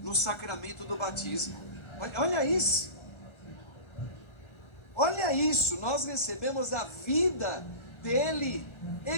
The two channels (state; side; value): late; right; 1.4 ms